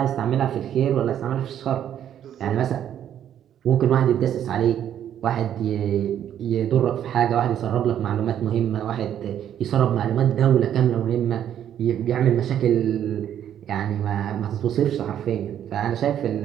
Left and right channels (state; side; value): quieter; left; 10.2 dB